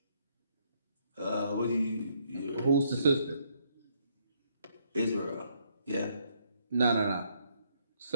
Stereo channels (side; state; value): both; inverted; correlation -0.71